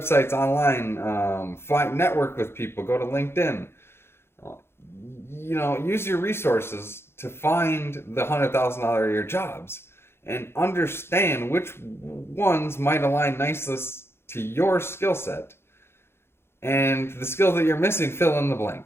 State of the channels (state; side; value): late; right; 0.12 ms